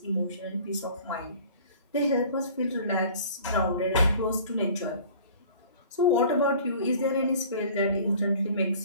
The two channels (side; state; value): both; inverted; correlation -0.47